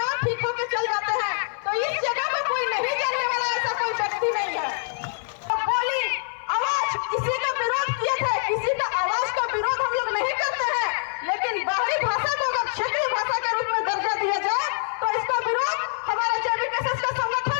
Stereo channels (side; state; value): right; silent; 56 dB below the other